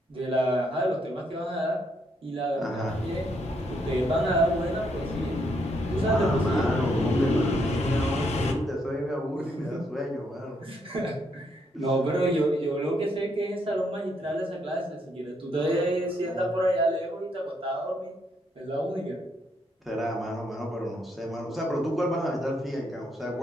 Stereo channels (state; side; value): normal; both; correlation 0.74